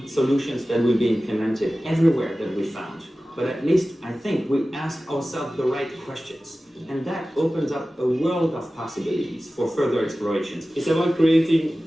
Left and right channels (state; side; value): normal; both; correlation 0.96